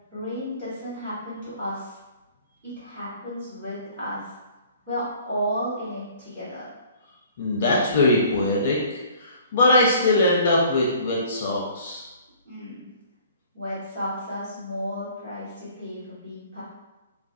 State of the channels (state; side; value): inverted; both; correlation -0.53